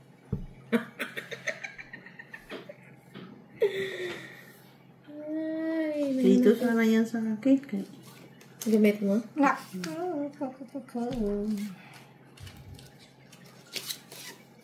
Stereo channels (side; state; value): both; identical; correlation 1.00